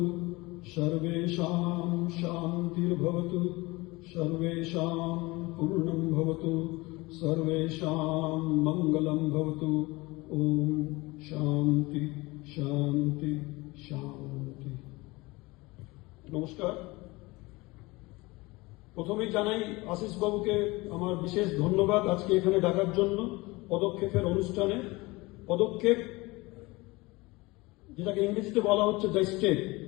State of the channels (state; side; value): quieter; right; 22.7 dB